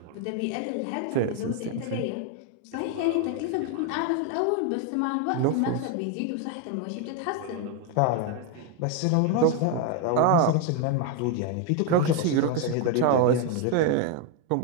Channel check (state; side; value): different; both; correlation 0.01